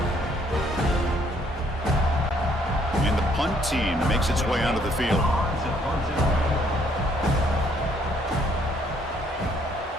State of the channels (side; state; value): both; normal; correlation 0.66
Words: And the punt team makes its way onto the field.